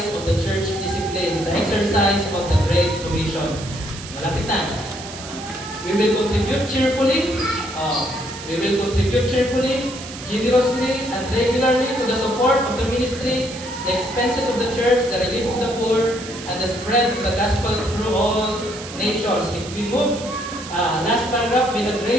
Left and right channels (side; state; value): right; noise; hiss, 13 dB below the sound